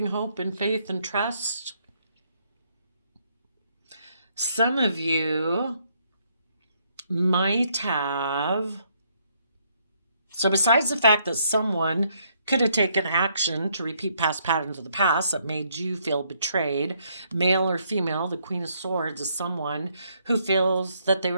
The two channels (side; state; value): both; inverted; correlation -0.71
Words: hope and faith and trust. Some of you might have, so besides the fact that someone could have taken action to repeat past patterns of the past that made you feel betrayed, male or female, the Queen of Swords is someone who feels that they